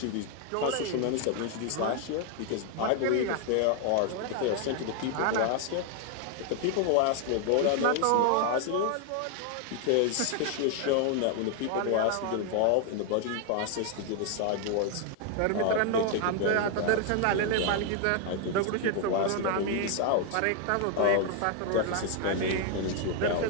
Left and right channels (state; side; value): different; both; correlation 0.00